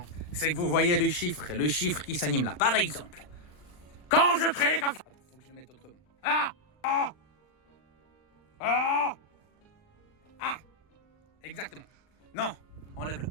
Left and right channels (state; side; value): late; right; 39 ms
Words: c'est que vous voyez le chiffre qui s'anime là. Par exemple, quand je crie comme ça... Attends, faut que je le mette autrement. Ah! Ah! Ah! Ah! Exactement. Non, enlève-le.